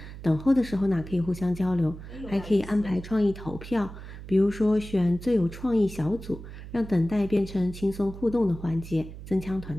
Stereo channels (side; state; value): right; noise; hum, 13 dB below the sound